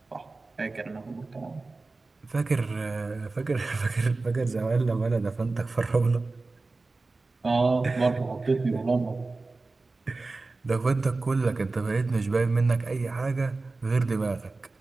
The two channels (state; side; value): quieter; left; 3.5 dB